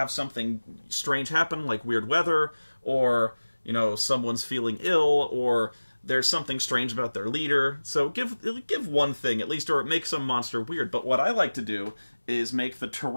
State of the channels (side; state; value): both; inverted; correlation -1.00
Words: something strange happen, like weird weather, or, you know, someone's feeling ill, or there's something strange about their leader. So give one thing at least, or make some monster weird. But what I like to do is make the